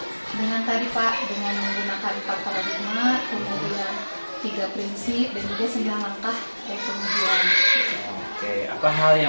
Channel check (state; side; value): inverted; both; correlation -1.00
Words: dengan tadi Pak, dengan menggunakan 4 paradigma, kemudian 3 prinsip dan juga 9 langkah kemudian. Oke, apa hal